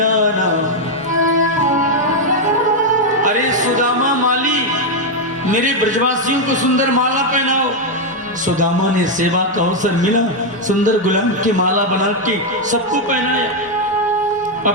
अरे सुदामा माली मेरे ब्रजवासियों को सुंदर माला पहनाओ। सुदामा ने सेवा का अवसर मिला, सुंदर गुलाब की माला बना के सबको पहनाया।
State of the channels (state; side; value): normal; both; correlation 0.01